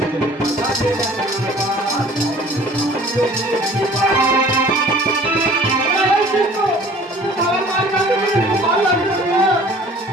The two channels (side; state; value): both; normal; correlation 0.49